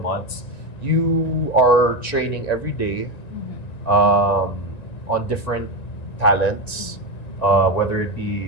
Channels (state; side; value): late; right; 1.9 ms